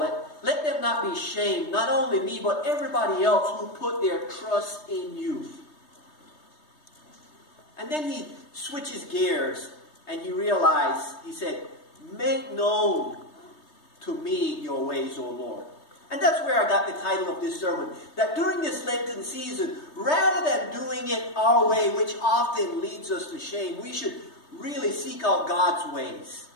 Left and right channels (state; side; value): late; right; 3.2 ms